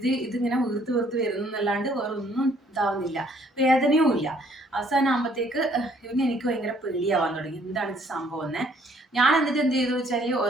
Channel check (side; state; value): both; normal; correlation 0.63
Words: ഇതിങ്ങനെ വീർത്ത് വരുന്നു എന്നല്ലാണ്ട് വേറെ ഒന്നും ഇതാവുന്നില്ല, വേദനയും ഇല്ല. അവസാനം ആകുമ്പോഴത്തേക്ക് പിന്നെ എനിക്ക് ഭയങ്കര പേടിയാവാൻ തുടങ്ങി. എന്താണ് ഇത് സംഭവം എന്നേ. ഞാൻ എന്നിട്ട് എന്ത് ചെയ്തു വെച്ചാൽ